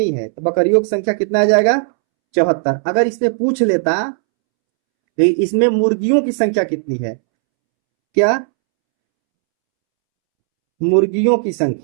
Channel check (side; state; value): left; silent; 69 dB below the other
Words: है, तो बकरियों की संख्या कितना आ जाएगा? 74। अगर इसमें पूछ लेता कि इसमें मुर्गियों की संख्या कितनी है, क्या? मुर्गियों की